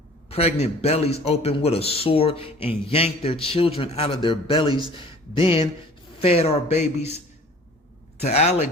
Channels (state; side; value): normal; both; correlation 0.48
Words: pregnant bellies open with a sword and yanked their children out of their bellies, then fed our babies to